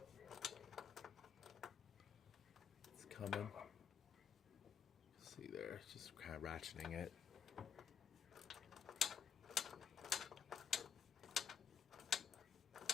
It's coming. See there, it's just kind of ratcheting it.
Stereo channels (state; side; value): quieter; right; 7.5 dB